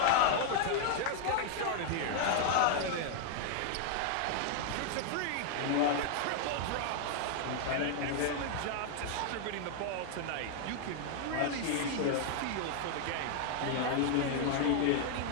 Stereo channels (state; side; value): different; both; correlation 0.00